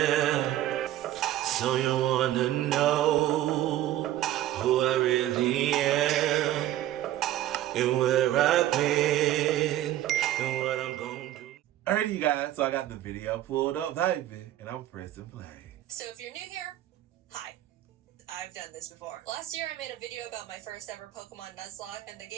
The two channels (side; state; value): left; quieter; 13.6 dB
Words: So you wanna know who I really am, and where I've been, and what I'm gonna do. Alrighty, you guys, so I got the video pulled up, baby, and I'm pressing play. So if you're new here, hi. I've done this before. Last year I made a video about my first ever Pokemon Nuzlocke, and the